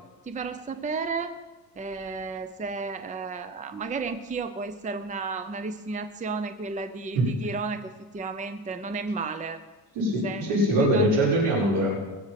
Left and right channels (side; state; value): both; normal; correlation 0.27